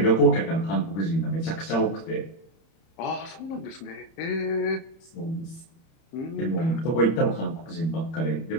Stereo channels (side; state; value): right; late; 31 ms